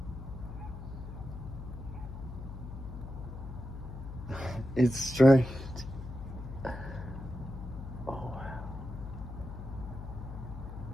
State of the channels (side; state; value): left; noise; hum, 9 dB below the sound